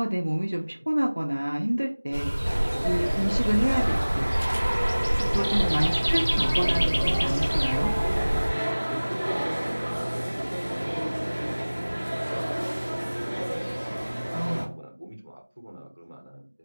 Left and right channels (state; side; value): inverted; both; correlation -1.00